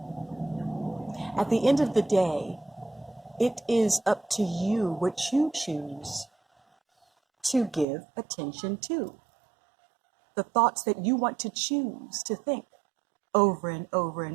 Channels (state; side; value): drops out; left; at 7.9 s